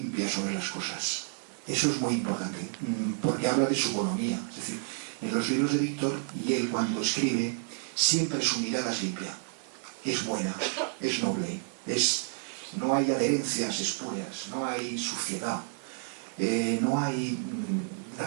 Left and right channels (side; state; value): left; silent; 58 dB below the other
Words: sobre las cosas. Eso es muy importante, porque habla de su bonomía. Es decir, en los libros de Víctor, y él cuando escribe, siempre su mirada es limpia. Es buena, es noble, no hay adherencias espurias, no hay suciedad, no hay